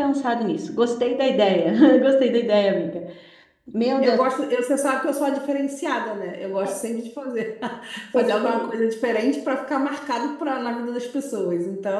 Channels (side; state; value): both; identical; correlation 1.00